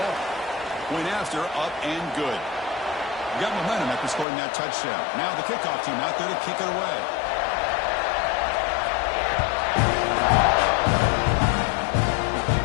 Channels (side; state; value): right; drops out; at 4.2 s